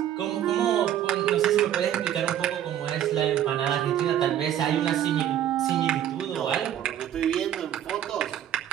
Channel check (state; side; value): quieter; left; 10.9 dB